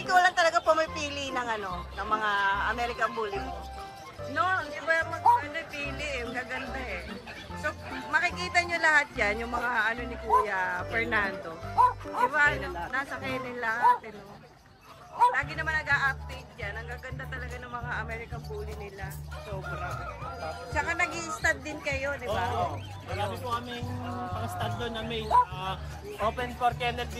ikaw lang talaga pumipili ng ano, ng mga American Bully mo. No, hindi ba mag-pili eh. Ang gaganda eh. So, makikita nyo lahat yan, yung mga ano ni Kuya Fernando. Di ba, nasa kailan lahat, eh, no? Lagi naman nag-a-update yan. Ang gaganda talaga ng mga American Bully nila. Sobra. Tsaka nag-i-stud din kayo, di ba? Oo. Marami po kaming pang-stud doon na mail. Open for kennel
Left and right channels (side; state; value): both; identical; correlation 1.00